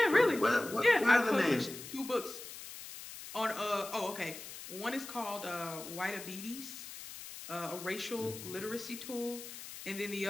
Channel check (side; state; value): left; noise; hiss, 12 dB below the sound